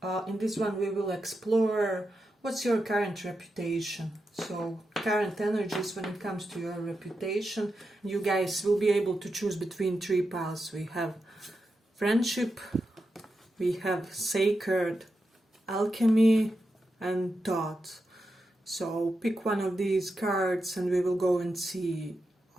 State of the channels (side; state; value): both; normal; correlation 0.88